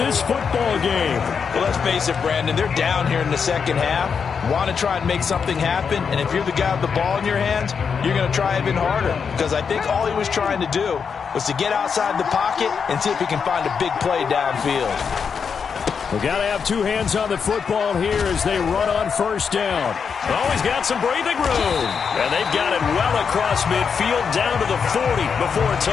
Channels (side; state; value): right; quieter; 6.2 dB